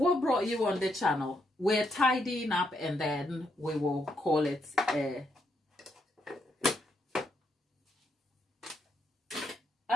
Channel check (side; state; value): both; normal; correlation 0.78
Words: brought you on the channel? We're tidying up and then we will call it